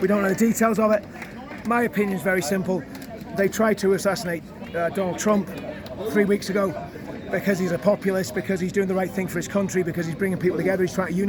We don't know the details of it. My opinion is very simple. They tried to assassinate Donald Trump 3 weeks ago because he's a populist, because he's doing the right thing for his country, because he's bringing people together, he's trying to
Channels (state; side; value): identical; both; correlation 1.00